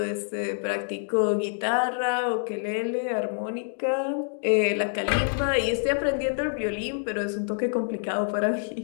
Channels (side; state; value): right; silent; digital silence